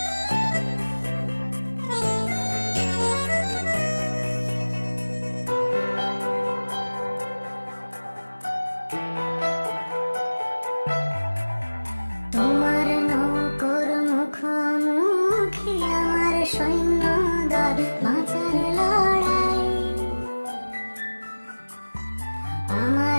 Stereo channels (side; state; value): both; inverted; correlation -1.00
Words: তোমার নৌকোর মুখোমুখি আমার সৈন্যদল, বাঁচার লড়াই।